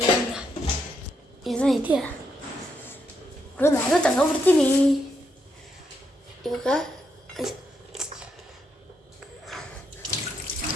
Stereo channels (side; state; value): both; normal; correlation 0.79